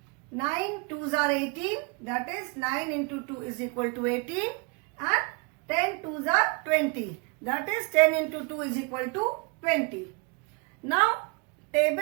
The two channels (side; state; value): left; quieter; 32.2 dB